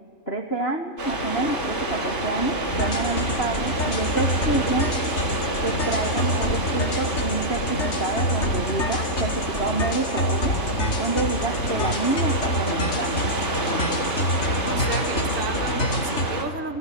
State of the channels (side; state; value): right; late; 3.4 ms